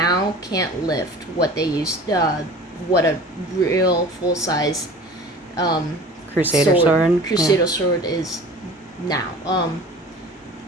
can't lift what they used, what a real full-size Crusader sword? Crusader sword is now.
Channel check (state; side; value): normal; both; correlation 0.42